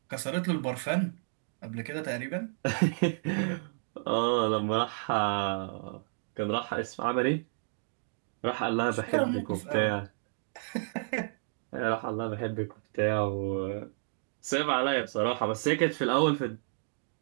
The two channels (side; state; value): left; silent; digital silence